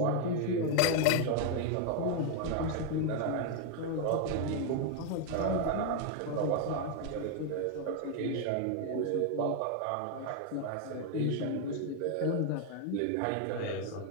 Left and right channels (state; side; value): different; both; correlation 0.01